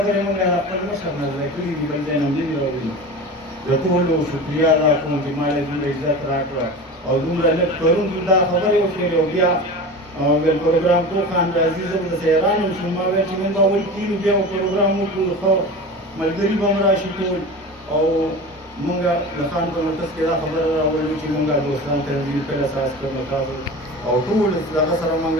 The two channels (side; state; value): both; normal; correlation 0.32